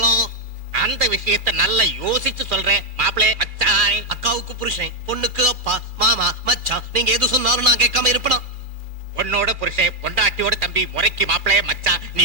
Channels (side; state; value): left; late; 2.5 ms